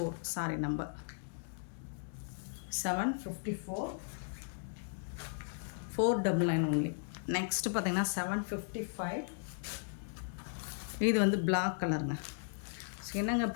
சாரி நம்பர் 754, 499 ஒன்லி. நெக்ஸ்ட்டு பார்த்தீங்கன்னா 755. இது வந்து பிளாக் கலருங்க. ஸோ என்னங்க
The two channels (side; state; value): right; silent; digital silence